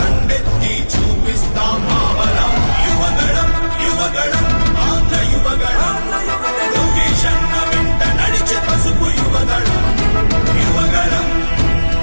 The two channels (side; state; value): both; inverted; correlation -1.00